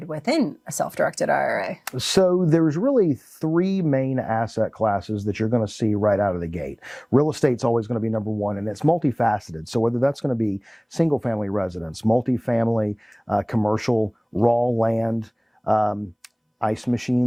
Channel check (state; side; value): identical; both; correlation 1.00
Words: within a self-directed IRA? So there's really three main asset classes that you're going to see right out of the gate. Real estate's always going to be number one, and it's multifaceted. So whether that's going to be single family residence, multifamily, commercial, raw land, ice